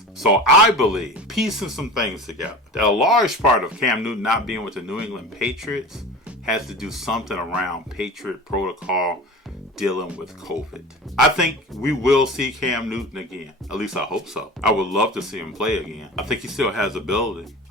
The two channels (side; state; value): both; normal; correlation 0.35